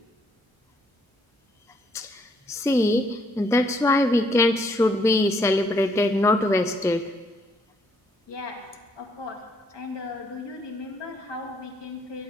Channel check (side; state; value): both; normal; correlation 0.70